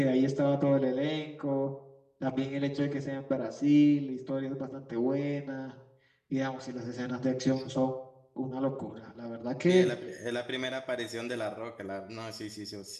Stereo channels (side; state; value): both; identical; correlation 1.00